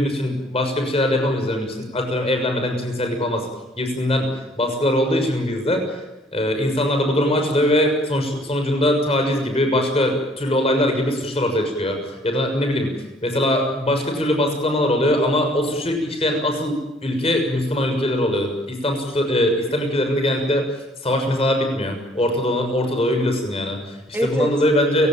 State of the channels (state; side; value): normal; both; correlation 0.59